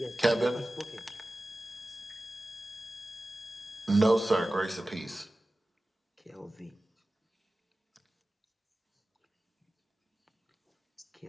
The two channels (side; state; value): both; normal; correlation 0.95